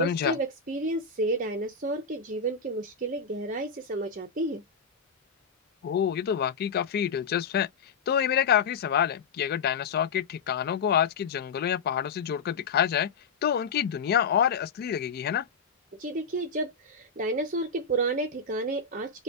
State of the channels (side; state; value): right; quieter; 5.1 dB